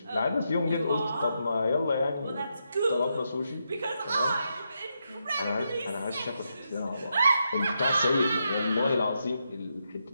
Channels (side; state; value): both; inverted; correlation -0.83